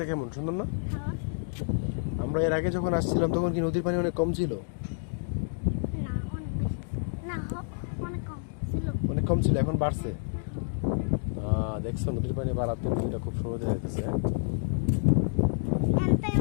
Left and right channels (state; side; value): silent; right; digital silence